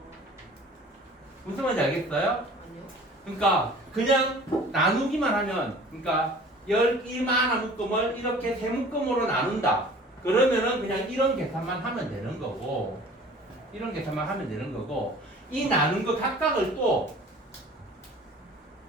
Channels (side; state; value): both; normal; correlation 0.46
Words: 무슨 말인지 알겠어요? 아니요. 그러니까 그냥 나누기만 하면, 그러니까 이만한 묶음을 이렇게 세 묶음으로 나눈다. 그러면은 그냥 이런 계산만 하면 되는 거고, 이 나눈 거 각각을 또